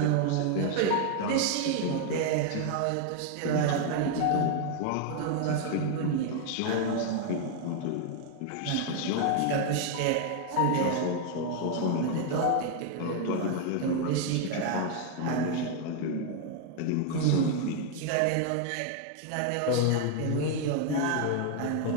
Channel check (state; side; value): different; both; correlation 0.00